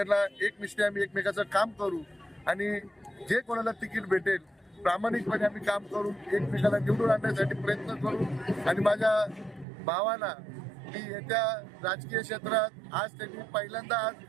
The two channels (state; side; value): drops out; left; at 9.7 s